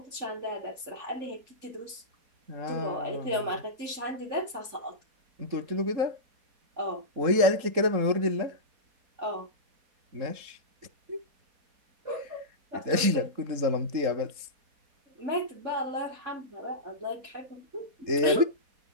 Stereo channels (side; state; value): left; late; 3.7 ms